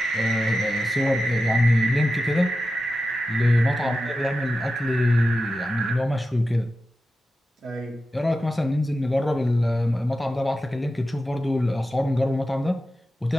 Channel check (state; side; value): normal; both; correlation 0.92